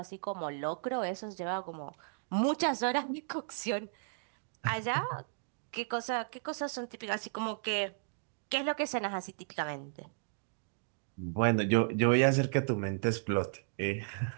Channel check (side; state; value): left; silent; digital silence